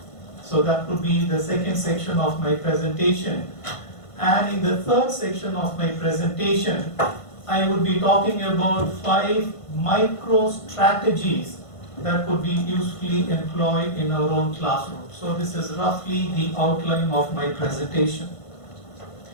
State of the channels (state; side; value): late; right; 1.5 ms